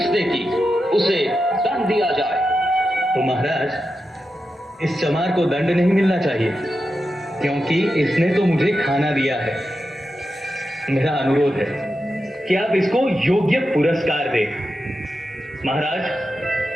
की? उसे दंड दिया जाए। तो महाराज, इस चमार को दंड नहीं मिलना चाहिए, क्योंकि इसने तो मुझे खाना दिया है। मेरा अनुरोध है कि आप इसको योग्य पुरस्कार दें। महाराज,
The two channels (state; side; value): normal; both; correlation 0.89